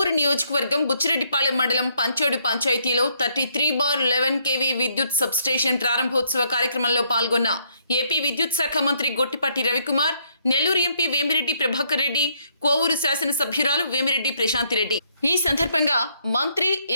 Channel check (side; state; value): both; inverted; correlation -0.70